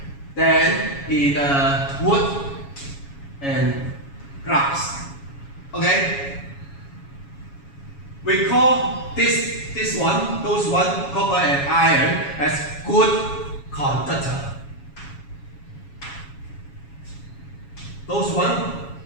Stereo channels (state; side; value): late; right; 7.2 ms